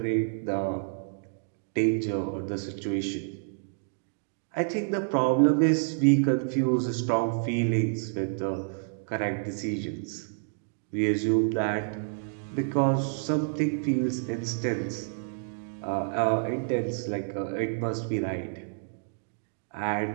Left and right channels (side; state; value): left; silent; digital silence